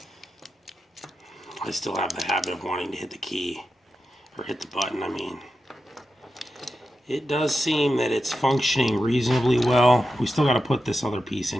I still have the habit of wanting to hit the key, or hit the button, I mean. It does seem that it's functioning reasonably well. We still got to put this other piece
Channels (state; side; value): normal; both; correlation 0.90